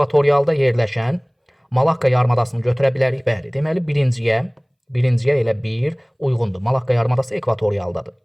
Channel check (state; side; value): identical; both; correlation 1.00